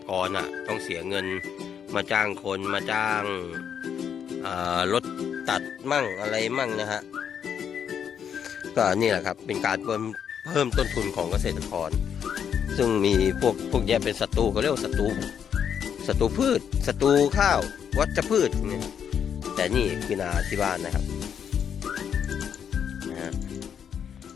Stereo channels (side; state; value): right; quieter; 8.1 dB